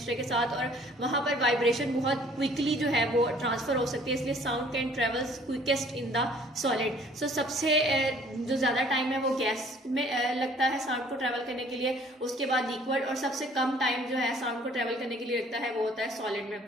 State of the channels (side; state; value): both; normal; correlation 0.56